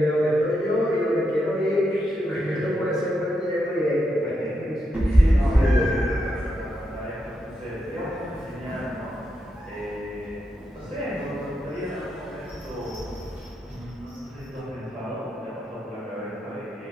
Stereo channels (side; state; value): both; normal; correlation 0.83